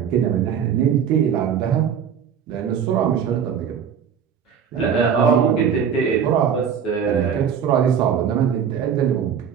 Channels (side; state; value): left; quieter; 7.8 dB